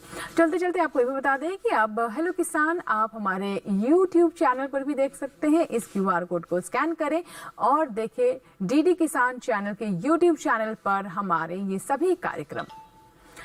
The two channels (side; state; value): both; identical; correlation 1.00